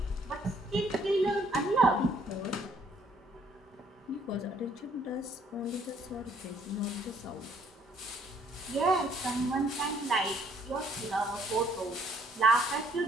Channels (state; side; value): normal; both; correlation 0.65